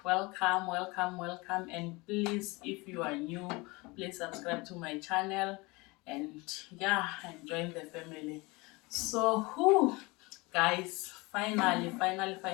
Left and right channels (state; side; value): quieter; right; 24.7 dB